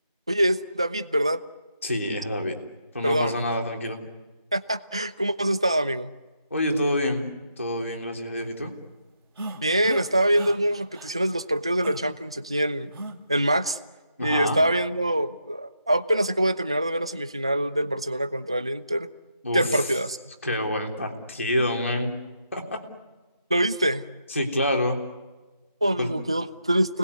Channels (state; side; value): inverted; both; correlation -0.80